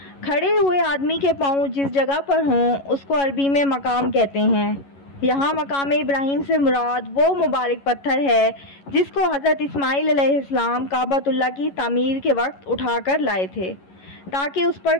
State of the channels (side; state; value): right; late; 11 ms